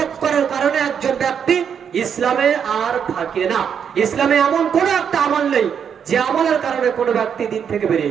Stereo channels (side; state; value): left; quieter; 7.6 dB